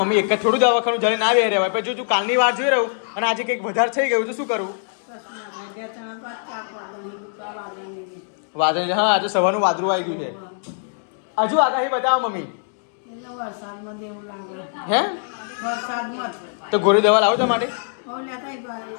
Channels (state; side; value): silent; right; digital silence